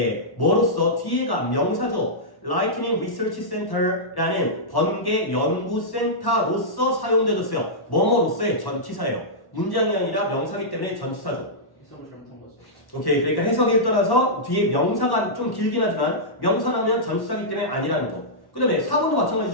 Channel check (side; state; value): right; late; 1.1 ms